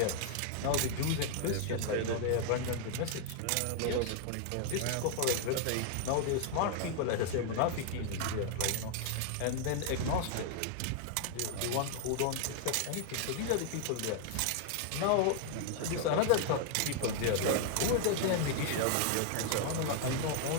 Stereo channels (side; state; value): both; different; correlation 0.00